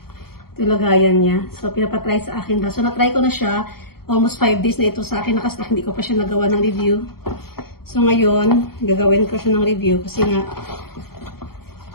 yung lagayan niya. So, pinapatry sa akin. So, na-try ko na siya. Almost 5 days na ito sa akin. Nakastack, hindi ko pa siya nagawa ng review. So, ngayon, gagawin ko siya ng review kasi nga,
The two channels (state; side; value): late; right; 0.94 ms